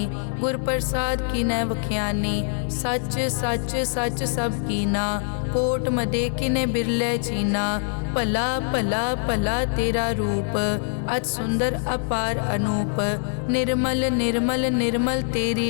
गुर प्रसाद की न वख्यानी। सच सच सच सब कीना, कोट मदे किने बिरले चीना। भला भला भला तेरा रूप, अति सुंदर अपार अनूप। निर्मल निर्मल निर्मल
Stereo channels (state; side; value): silent; right; digital silence